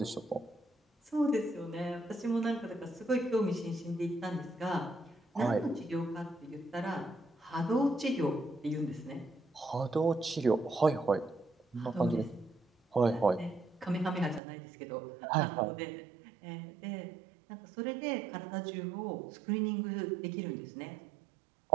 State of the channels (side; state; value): left; drops out; at 14.4 s